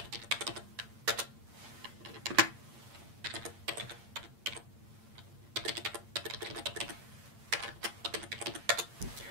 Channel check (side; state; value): left; late; 8.7 ms